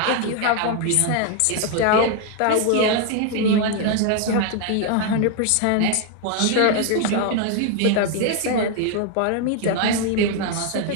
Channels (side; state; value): both; different; correlation 0.00